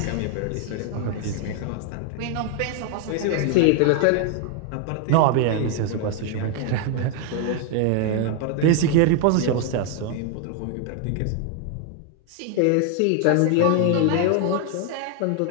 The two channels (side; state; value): both; different; correlation 0.01